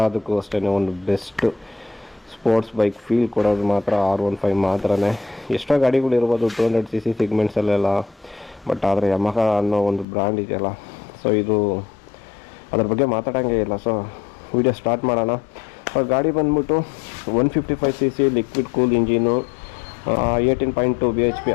ಅಷ್ಟೇ ಒಂದು ಬೆಸ್ಟ್ ಸ್ಪೋರ್ಟ್ಸ್ ಬೈಕ್ ಫೀಲ್ ಕೊಡೋದು ಮಾತ್ರ R15 ಮಾತ್ರನೇ. ಎಷ್ಟೋ ಗಾಡಿಗಳಿರ್ಬೋದು 200cc ಸಿಗ್ಮೆಂಟ್ಸಲ್ಲೆಲ್ಲ, ಬಟ್ ಆದರೆ ಯಮಹ ಅನ್ನೋ ಒಂದು ಬ್ರ್ಯಾಂಡ್ ಇದೆಯಲ್ಲ, ಸೊ ಇದು ಅದ್ರ ಬಗ್ಗೆ ಮಾತಾಡೋಂಗೆ ಇಲ್ಲ. ಸೊ ವಿಡಿಯೋ ಸ್ಟಾರ್ಟ್ ಮಾಡೋಣ. ಗಾಡಿ ಬಂದ್ಬಿಟ್ಟು 155cc liquid cool engine, 18.2 bhp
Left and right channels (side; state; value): right; drops out; at 10.1 s